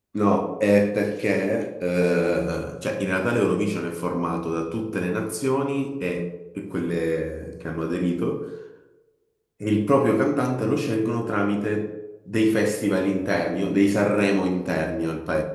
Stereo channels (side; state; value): both; identical; correlation 1.00